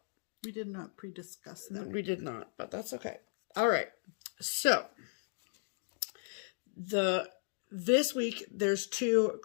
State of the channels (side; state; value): right; silent; digital silence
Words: We did not pre-discuss that. We did not, but that's okay. All right. So. This week, there's 2